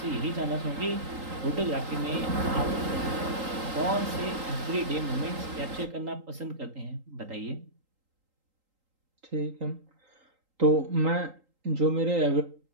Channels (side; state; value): left; late; 3.8 ms